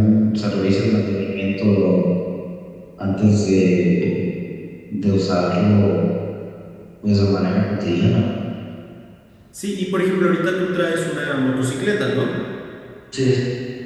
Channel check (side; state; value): both; identical; correlation 1.00